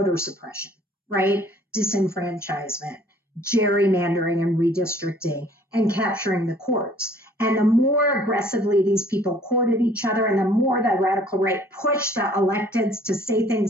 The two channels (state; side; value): normal; both; correlation 0.56